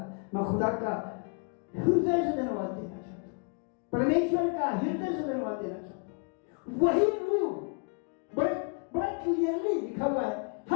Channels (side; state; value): right; quieter; 36.4 dB